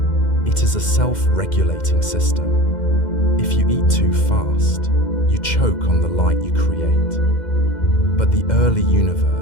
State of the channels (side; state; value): right; late; 2.1 ms